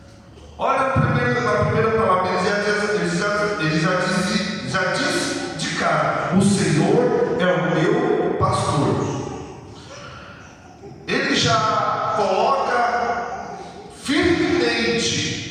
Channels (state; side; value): identical; both; correlation 1.00